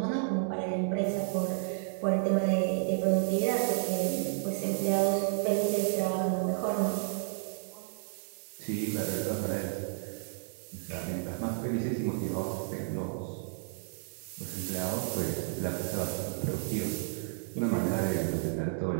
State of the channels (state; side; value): silent; left; digital silence